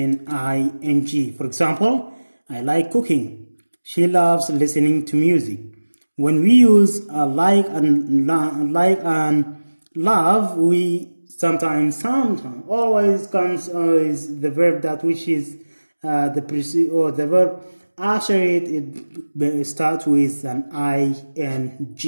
ing. For example, I like cooking. She loves listening to music. When we use like and love, we sometimes always comes is the verb that which is the verb after it starts with an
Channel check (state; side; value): inverted; both; correlation -1.00